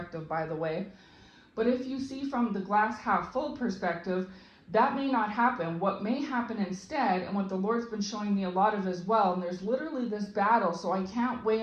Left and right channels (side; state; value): both; identical; correlation 1.00